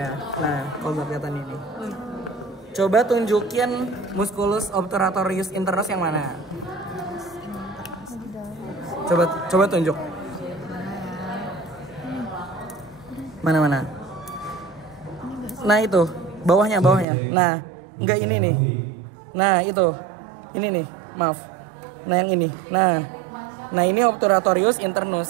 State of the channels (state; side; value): drops out; left; at 17.1 s